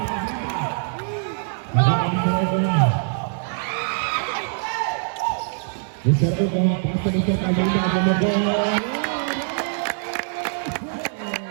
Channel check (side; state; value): left; silent; 63 dB below the other